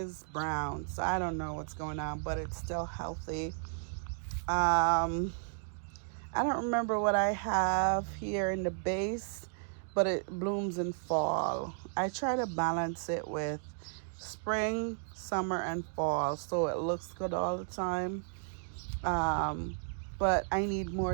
brown, so I don't know what's going on, but it's still healthy. I don't remember what I have here in the base, but it blooms in fall. I try to balance it with spring, summer, and fall, so it looks good all the time. But I need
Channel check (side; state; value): left; silent; digital silence